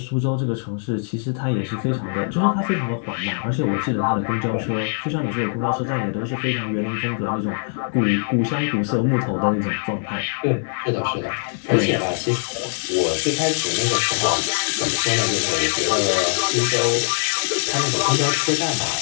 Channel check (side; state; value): right; silent; digital silence